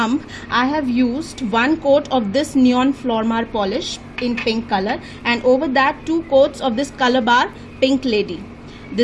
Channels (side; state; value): both; identical; correlation 1.00